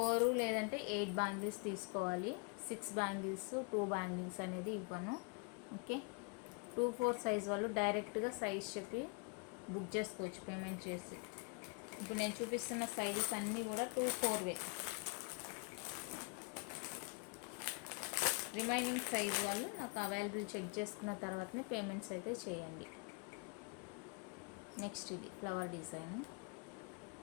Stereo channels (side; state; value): right; quieter; 33.0 dB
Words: లేదంటే 8 బ్యాంగిల్స్ తీసుకోవాలి. 6 బ్యాంగిల్స్ 2 బ్యాంగిల్స్ అనేది ఇవ్వను. ఓకే, 2-4 సైజ్ వాళ్ళు డైరెక్ట్గా సైజ్ చెప్పి బుక్ చేసుకోవచ్చు పేమెంట్ చేసి. ఇప్పుడు నేను చూపిస్తున్న సైజెస్ అన్నీ కూడా 2-4వే. రిమైనింగ్ సైజ్ వాళ్ళు నాకు అవైలబుల్ చెక్ చేసుకున్న తర్వాతనే పేమెంట్స్ అయితే చేయండి. నెక్స్ట్ ఇది ఫ్లవర్ డిజైన్.